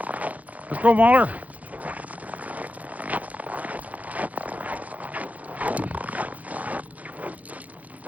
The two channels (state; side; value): late; left; 0.074 ms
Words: Let's go, Mahler.